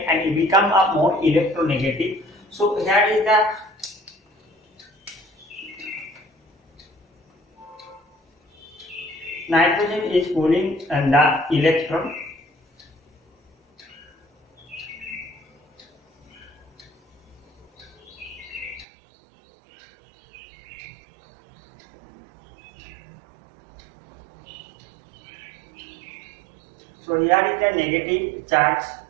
it become a more electronegative. So here is the nitrogen is pulling the electron, so here is the negative charge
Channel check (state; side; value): drops out; left; at 18.9 s